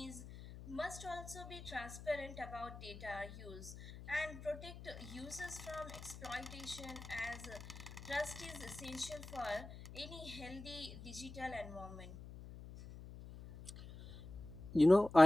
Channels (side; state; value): left; noise; hum, 13 dB below the sound